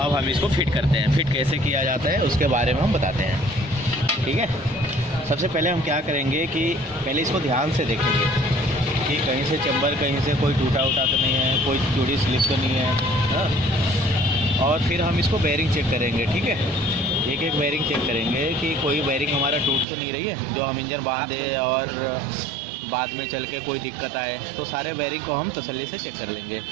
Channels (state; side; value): drops out; left; at 19.9 s